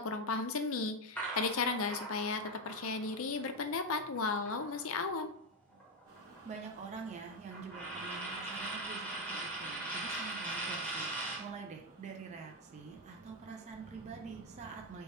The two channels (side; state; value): both; normal; correlation 0.07